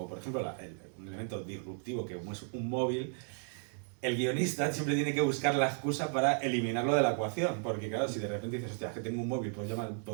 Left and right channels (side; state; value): left; silent; 55 dB below the other